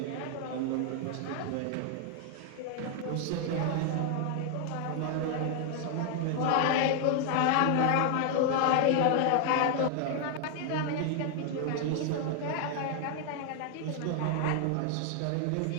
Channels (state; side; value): different; both; correlation 0.00